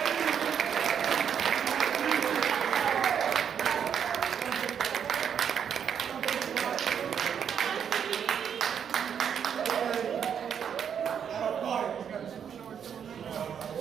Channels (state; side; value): quieter; left; 8.0 dB